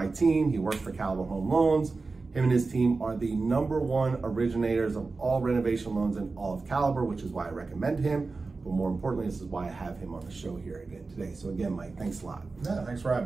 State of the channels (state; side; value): quieter; left; 3.9 dB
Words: team. He works for Caliber Home Loans. Him and his team are the #1 originators of all renovation loans in all of Caliber, which is why I recommend him. But more importantly, this is why I have him on the show here again today. So again, Mike, thanks a lot. Yeah, thanks for